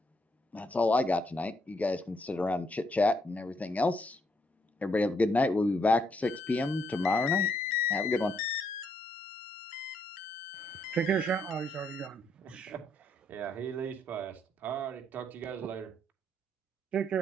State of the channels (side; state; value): both; normal; correlation 0.73